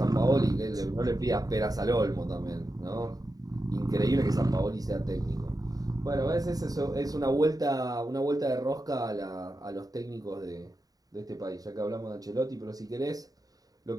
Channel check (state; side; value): late; left; 0.18 ms